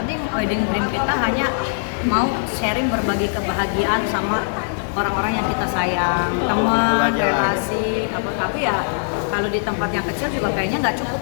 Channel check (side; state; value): right; silent; digital silence